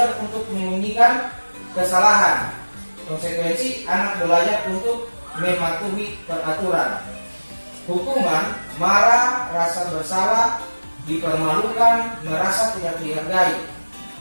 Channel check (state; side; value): inverted; both; correlation -1.00